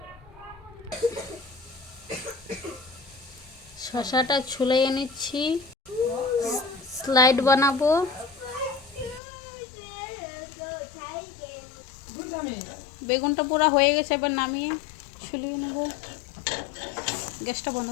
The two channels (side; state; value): right; drops out; at 9.2 s